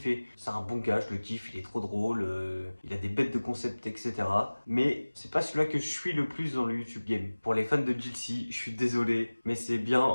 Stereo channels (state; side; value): inverted; both; correlation -1.00